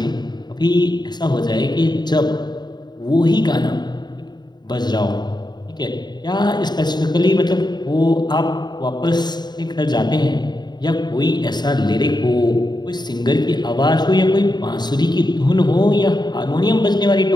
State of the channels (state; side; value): late; right; 0.21 ms